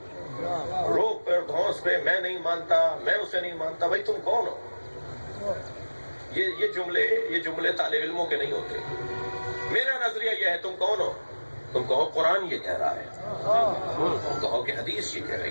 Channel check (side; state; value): both; inverted; correlation -1.00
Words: روک پر دھونس پہ میں نہیں مانتا، میں اسے نہیں مانتا، بھائی تم کون ہو؟ یہ جملے طالب علموں کے نہیں ہوتے. میرا نظریہ یہ ہے، تم کون ہو؟ تم کہو قرآن یہ کہہ رہا ہے، تم کہو کہ حدیث یہ کہہ